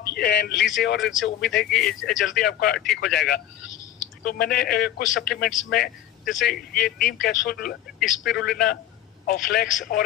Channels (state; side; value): quieter; right; 12.1 dB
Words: लीजिए और इनसे उम्मीद है कि जल्दी आपका ठीक हो जाएगा। तो मैंने कुछ सप्लीमेंट्स में जैसे ये नीम कैप्सूल, स्पिरुलिना और फ्लेक्स